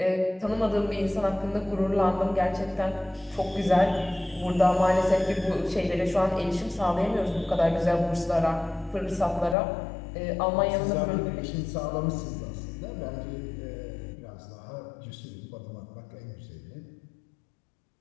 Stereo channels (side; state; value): right; drops out; at 9.6 s